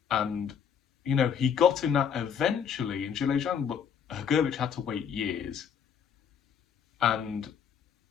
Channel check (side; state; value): right; quieter; 7.6 dB